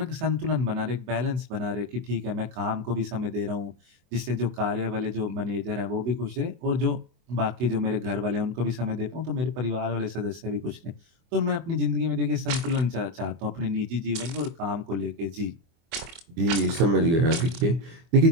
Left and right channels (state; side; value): late; left; 24 ms